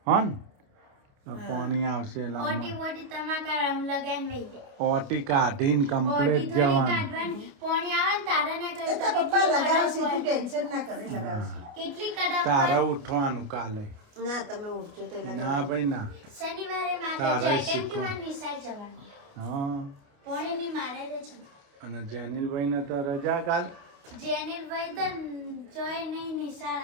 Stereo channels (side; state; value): left; late; 29 ms